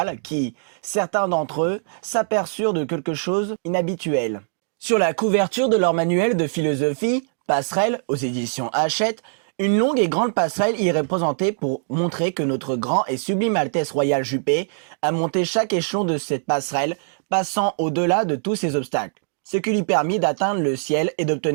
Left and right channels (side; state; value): left; silent; digital silence